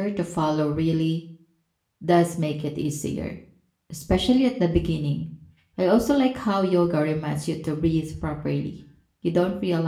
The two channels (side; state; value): both; identical; correlation 1.00